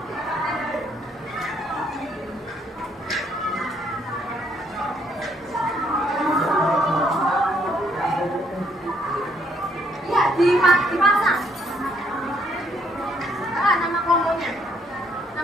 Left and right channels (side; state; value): both; normal; correlation 0.69